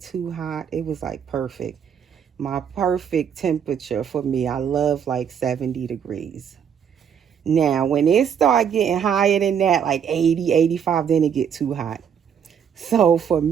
too hot. It was like perfect. My perfect temperature for me. I love like 70 degrees. Now, when it start getting higher than that, like 80, 85, then it get too hot. So for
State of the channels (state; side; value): quieter; left; 7.9 dB